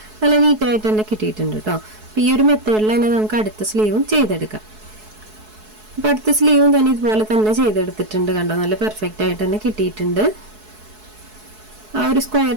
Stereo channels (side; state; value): left; late; 4.7 ms